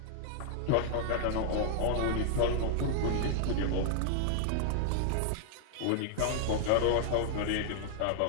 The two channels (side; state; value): both; different; correlation 0.00